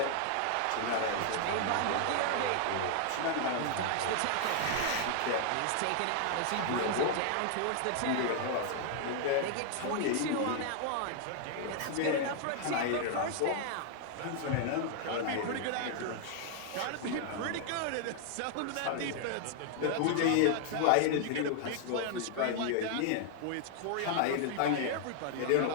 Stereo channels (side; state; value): both; different; correlation 0.00